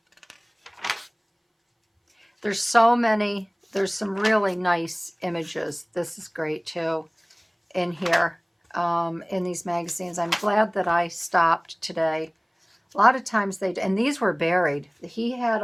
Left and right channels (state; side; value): identical; both; correlation 1.00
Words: There's so many. There's some really nice images. This is great too in here, in these magazines. I'm glad that I stopped today. A lot of times and these were buried. He had